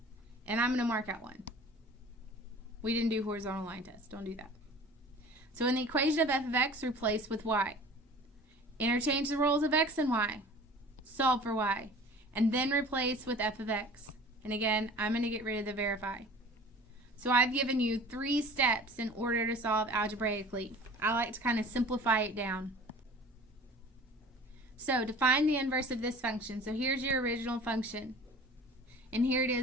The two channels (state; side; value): normal; both; correlation 0.44